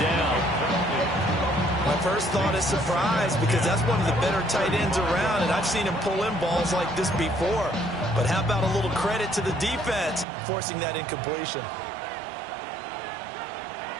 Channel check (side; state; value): left; drops out; at 10.2 s